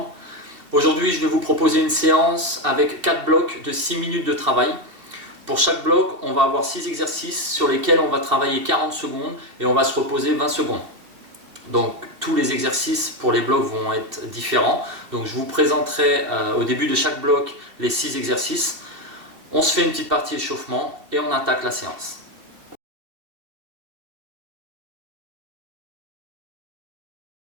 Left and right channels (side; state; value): left; late; 2.7 ms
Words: Aujourd'hui, je vais vous proposer une séance avec 4 blocs de 6 minutes de travail. Pour chaque bloc, on va avoir 6 exercices sur lesquels on va travailler 40 secondes et on va se reposer 20 secondes. Donc tous les exercices pour les blocs vont être différents. Donc je vous présenterai au début de chaque bloc les 6 exercices. On se fait une petite partie échauffement et on attaque la séance.